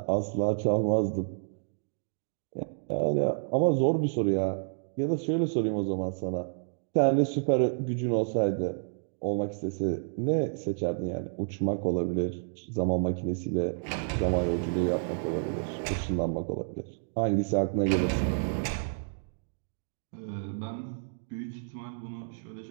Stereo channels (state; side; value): silent; left; digital silence